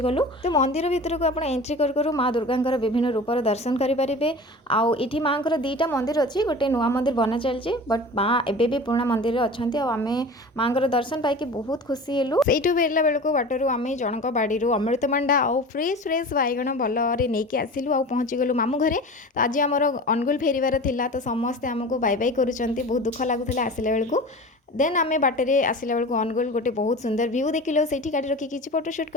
गलु तो मंदिर भितर को आप एंट्री करूँ माँ दुर्गा विभिन्न रूपर दर्शन करेंगे आठी माँ दीटा मंदिर अच्छी गोटे नुआ मंदिर बना चलती बट माँ एबे भी पुराना मंदिर अच्छा आम माँ दर्शन पाई बहुत खुशी हेलु से फेरला बेलू बाटू आम जनक बाड़ी अमृतभंडा आउ फ्रेश फ्रेश बैगण भलरे नहीं आसिलु आ पहुँची गलु मामू घरे तो आज आमर अनुगुल फेरबार थिला तो समस्ते आमको बाय बाय करुँच बहुत दुख लगुला आसला बेलू देन आम बाटे आसला बेलू अनुगुल गोटे बहुत सुंदर व्यू देखिलु से गाड़ी रखी किसी फोटोशूट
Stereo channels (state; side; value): normal; both; correlation 0.36